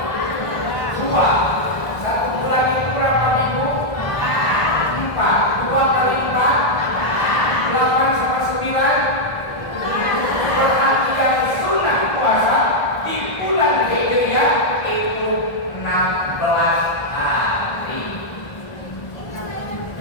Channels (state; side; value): late; right; 1.5 ms